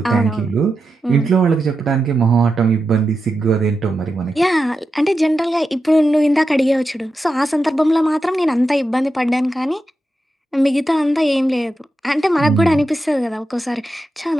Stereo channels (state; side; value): normal; both; correlation 0.89